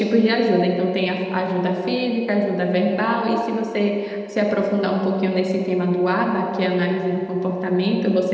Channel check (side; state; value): both; identical; correlation 1.00